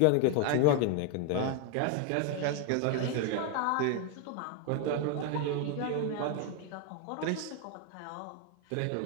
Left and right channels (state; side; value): different; both; correlation 0.01